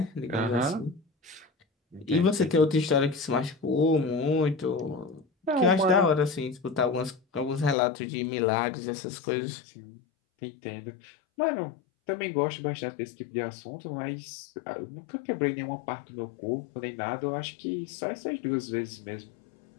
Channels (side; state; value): right; drops out; at 7.8 s